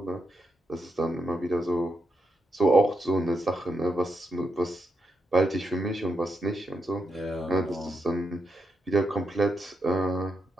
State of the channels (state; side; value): normal; both; correlation 0.84